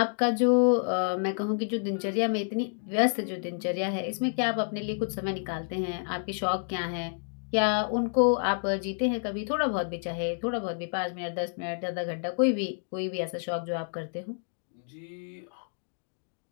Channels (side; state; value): right; silent; digital silence